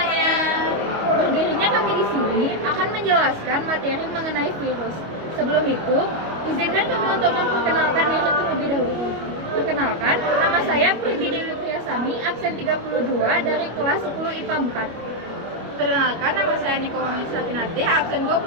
Berdirinya kami di sini akan menjelaskan materi mengenai virus. Sebelum itu, izinkan kami untuk memperkenalkan diri terlebih dahulu. Perkenalkan, nama saya Priti Dewi Priyasami, absen 32 dari kelas 10 IPA 4. Perkenalkan, nama saya Niko Wamisatinati, absen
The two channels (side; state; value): left; late; 25 ms